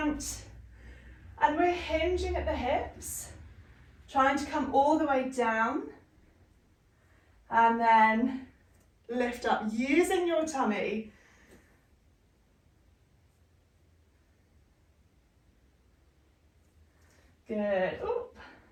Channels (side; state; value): both; identical; correlation 1.00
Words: And we're hinging at the hips, trying to come all the way down. And then lift up, using your tummy. Good. Ooh.